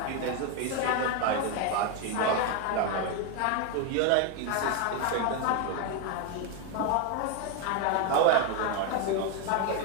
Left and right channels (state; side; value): different; both; correlation 0.01